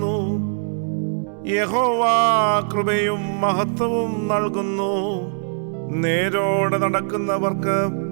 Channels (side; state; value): left; silent; 65 dB below the other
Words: യഹോവ കൃപയും മഹത്വവും നൽകുന്നു. നേരോടെ നടക്കുന്നവർക്ക്